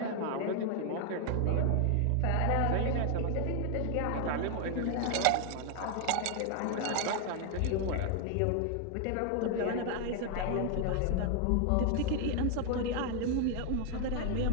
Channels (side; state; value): both; different; correlation 0.00